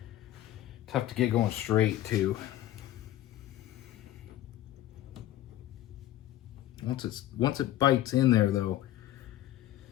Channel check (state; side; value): quieter; right; 13.5 dB